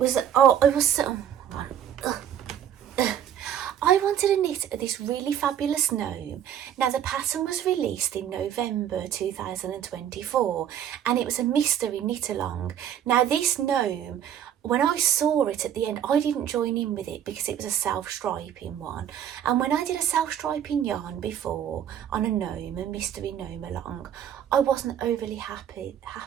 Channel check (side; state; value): left; quieter; 9.8 dB